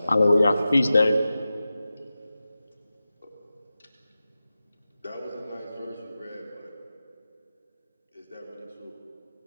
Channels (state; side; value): inverted; both; correlation -0.94